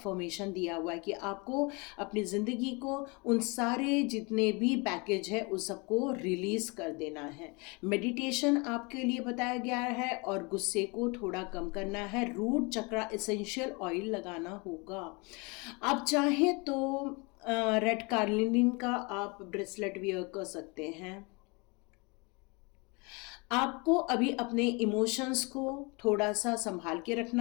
दिया हुआ है कि आपको अपनी ज़िंदगी को उन सारे जितने भी पैकेज है उस सबको रिलीज़ कर देना है। मेडिटेशन आपके लिए बताया गया है और गुस्से को थोड़ा कम करना है। रूट चक्रा एसेंशियल ऑयल लगाना होगा। आप चाहें तो रेड कार्लिनिन का आप ब्रेसलेट वियर कर सकते हैं। आपको अभी अपने इमोशंस को थोड़ा सा संभाल के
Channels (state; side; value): quieter; right; 29.1 dB